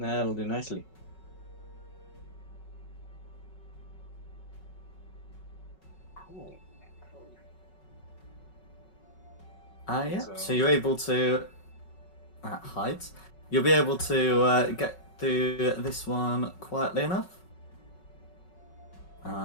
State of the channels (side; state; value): right; late; 5.4 ms